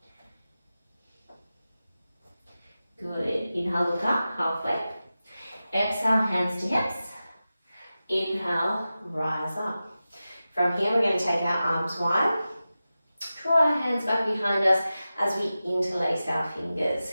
Good. Inhale, look up, halfway. Exhale, hands to hips. Inhale, rise up. From here, we're going to take our arms wide. Draw our hands back behind us as we interlace our fingers.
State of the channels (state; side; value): inverted; both; correlation -0.94